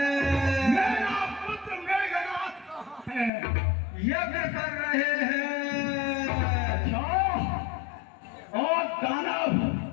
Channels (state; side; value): drops out; right; at 3.3 s